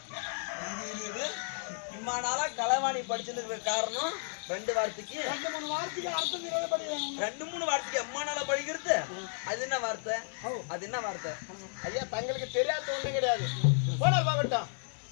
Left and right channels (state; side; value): silent; right; digital silence